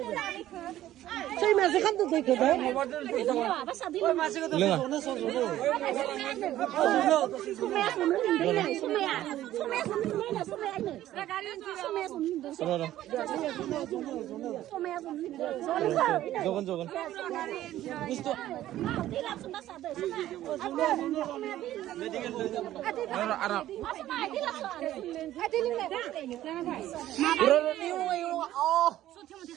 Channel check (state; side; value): quieter; left; 13.6 dB